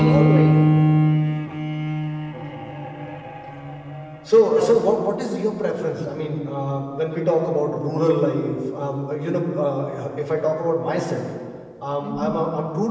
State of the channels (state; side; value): identical; both; correlation 1.00